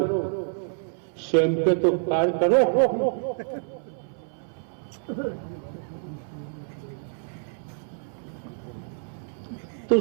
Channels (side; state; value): left; silent; 60 dB below the other